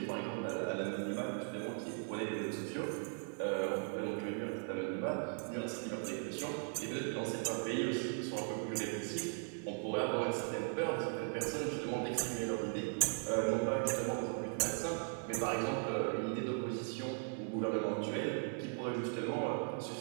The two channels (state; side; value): silent; left; 52 dB below the other